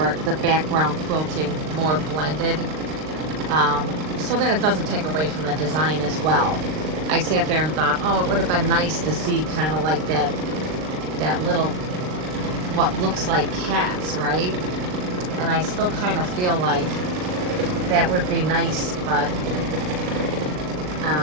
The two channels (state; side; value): late; left; 39 ms